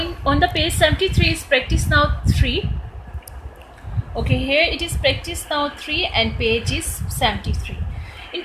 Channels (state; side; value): identical; both; correlation 1.00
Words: on the page 73 is practice now 3. Okay, here it is practice now 3 and page is 73. In